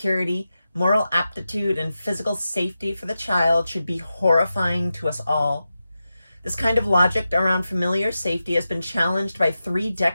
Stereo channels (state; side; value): inverted; both; correlation -0.91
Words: moral aptitude, and physical safety for the child should be horrifying to us all. This kind of logic around familiar safety has been challenged by 3